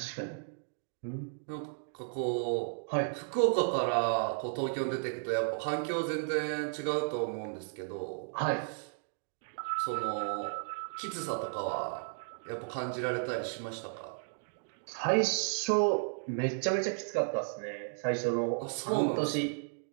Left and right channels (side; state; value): left; silent; digital silence